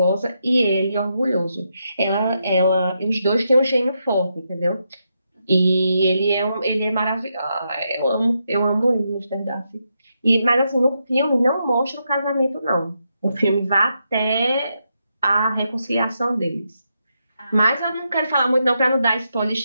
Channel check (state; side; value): inverted; both; correlation -0.83